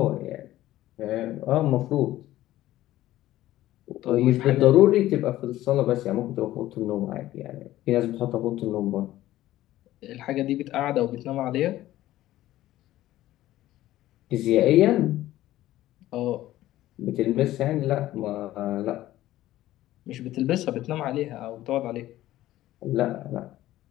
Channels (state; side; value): quieter; right; 14.9 dB